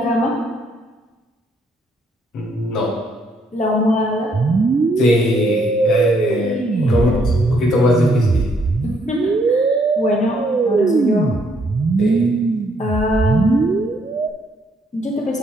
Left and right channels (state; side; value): normal; both; correlation 0.70